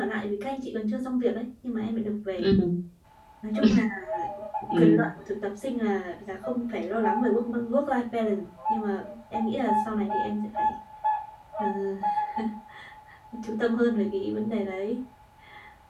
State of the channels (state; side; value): identical; both; correlation 1.00